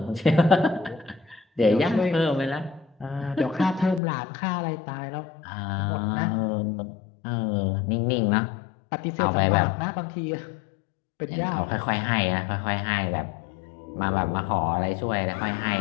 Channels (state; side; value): drops out; right; at 4.0 s